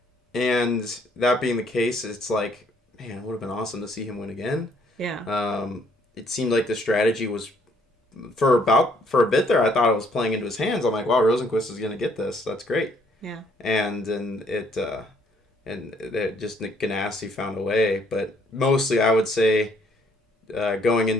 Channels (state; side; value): normal; both; correlation 0.66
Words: and that being the case, it's like, man, it would have been awesome to see him win again. Yeah. It seemed like the strategy was for a bit there. I thought it was playing into his hands. I'm like, wow, Rosenqvist is going to get this. That's great. Yeah. And it just Nick Ganassi found a way, but mostly I would say going